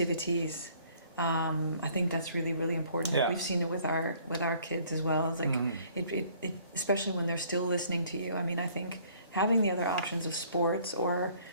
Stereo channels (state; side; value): inverted; both; correlation -0.59